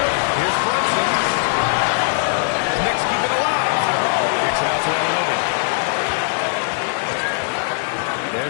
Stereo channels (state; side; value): silent; right; 58 dB below the other